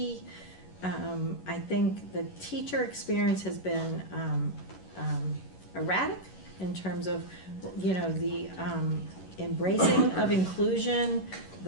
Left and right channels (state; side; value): late; right; 11 ms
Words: I think the teacher experience has been erratic in terms of, the embracing of inclusion,